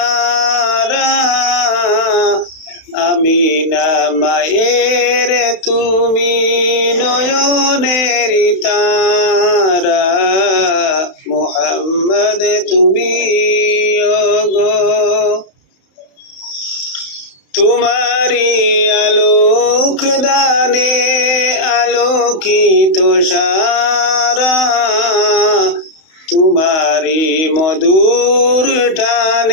আমিনা মায়ের তুমি নয়নের তারা। মুহাম্মদ তুমি ওগো তোমারি আলোক দানে আলোকিত সারা, তোমারি মধুর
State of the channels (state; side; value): late; right; 31 ms